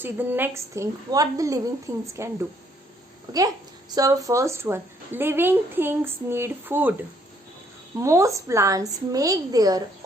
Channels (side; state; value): both; normal; correlation 0.67